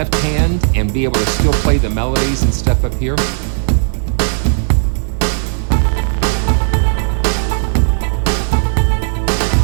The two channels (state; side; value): silent; left; digital silence